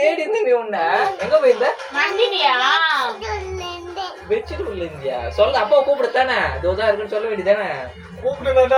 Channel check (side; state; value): both; identical; correlation 1.00